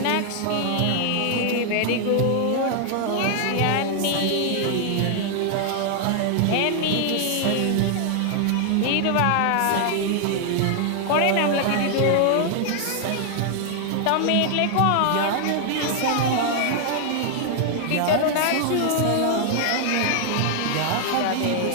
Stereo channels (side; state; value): both; different; correlation 0.00